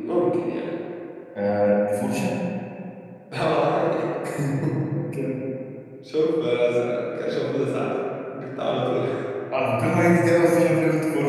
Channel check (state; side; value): identical; both; correlation 1.00